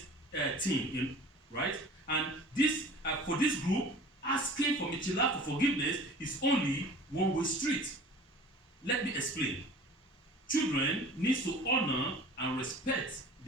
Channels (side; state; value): both; normal; correlation 0.43